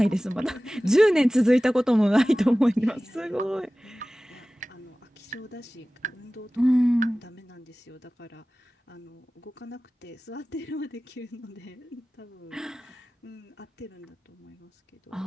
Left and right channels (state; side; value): normal; both; correlation 0.97